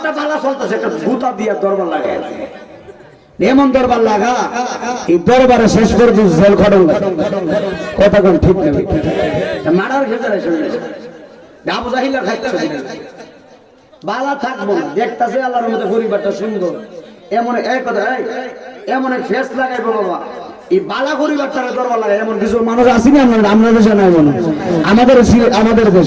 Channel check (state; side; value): identical; both; correlation 1.00